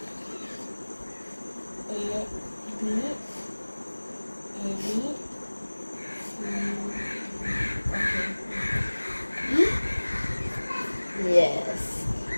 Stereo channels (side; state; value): both; inverted; correlation -1.00